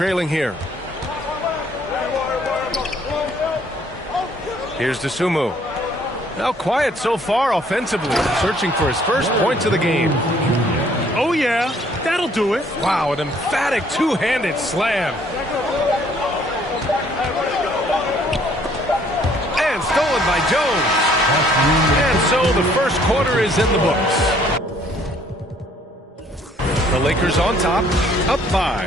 here. Here's Dosunmu. Now quiet so far offensively, searching for his first points of the game. Oh yeah, that'll do it. Wow, an emphatic two-handed slam. And stolen by Jones. And so the first quarter is in the books. The Lakers on top, up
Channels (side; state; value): both; normal; correlation 0.62